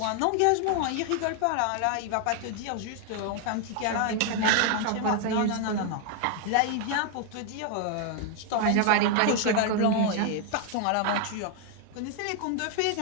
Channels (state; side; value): different; both; correlation 0.00